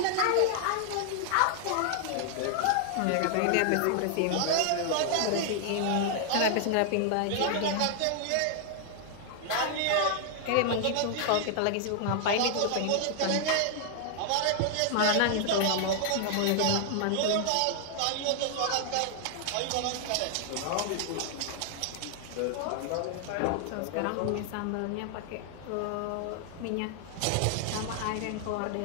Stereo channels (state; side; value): different; both; correlation 0.00